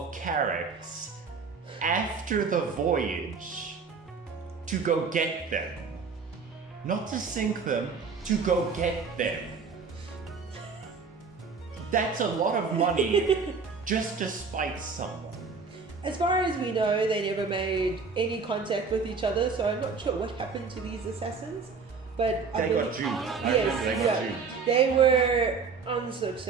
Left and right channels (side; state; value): left; quieter; 5.1 dB